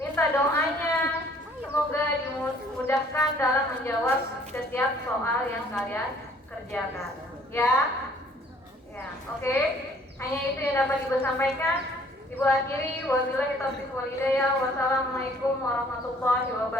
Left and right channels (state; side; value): normal; both; correlation 0.58